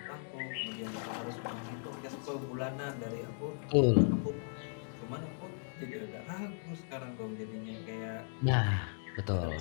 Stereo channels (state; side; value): silent; right; digital silence